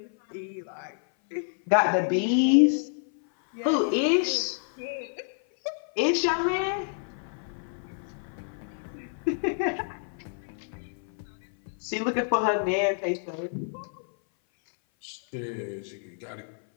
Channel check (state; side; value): silent; right; 57 dB below the other